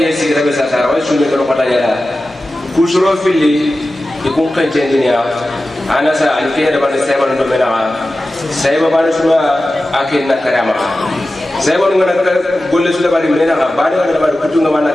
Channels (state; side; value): normal; both; correlation 0.94